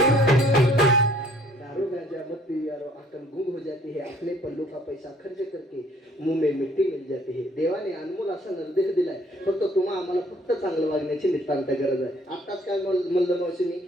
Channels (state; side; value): normal; both; correlation 0.60